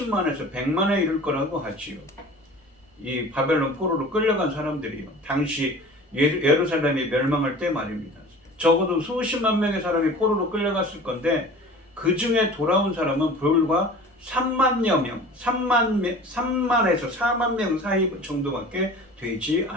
100만에 이를 거라고 하지요. 이 바벨론 포로로 끌려간 사람들이요. 당시 예루살렘이 멸망할 때 말입니다. 적어도 수십만 명의 사람이 포로로 끌려갔을 건데 그 중에 돌아온 사람은 불과 3만여 명, 3만에서 4만 명 사이 정도밖에 되지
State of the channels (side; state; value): both; normal; correlation 0.41